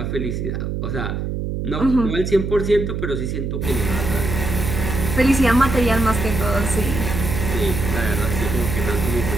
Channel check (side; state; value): right; noise; hum, 3 dB below the sound